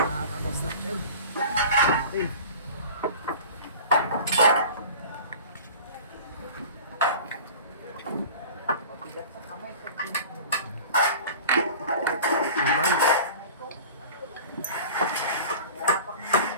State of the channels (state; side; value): inverted; both; correlation -0.39